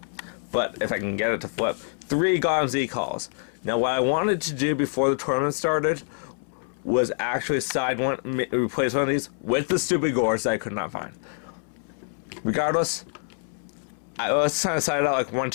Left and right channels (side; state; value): right; silent; 61 dB below the other